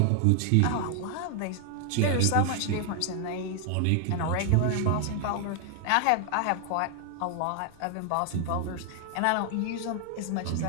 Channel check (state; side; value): different; both; correlation 0.00